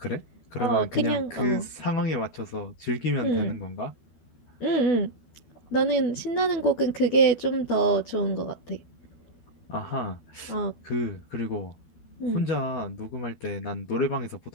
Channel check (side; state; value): right; late; 13 ms